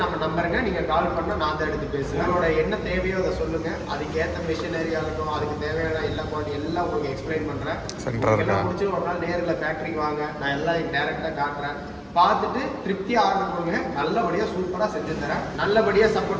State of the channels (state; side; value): identical; both; correlation 1.00